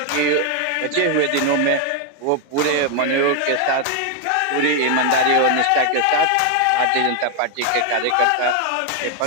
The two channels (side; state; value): both; different; correlation 0.01